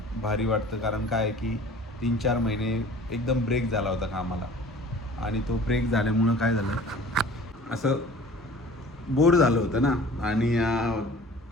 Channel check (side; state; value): both; normal; correlation 0.46